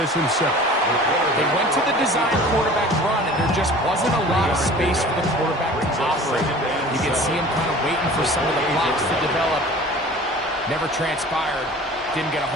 himself. They went to the design quarterback run, and there just wasn't a lot of space for the quarterback to operate. You can see him kind of waiting for some of the blocks to develop. Never transpired. Didn't get a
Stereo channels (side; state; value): both; normal; correlation 0.43